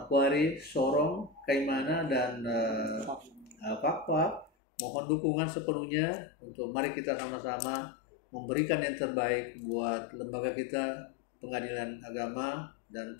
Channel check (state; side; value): drops out; right; at 4.5 s